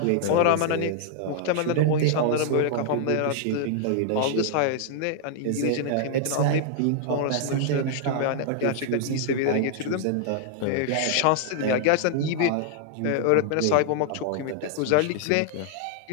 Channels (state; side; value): different; both; correlation -0.01